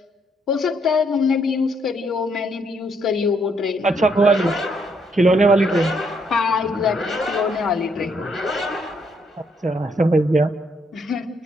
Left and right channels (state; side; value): normal; both; correlation 0.72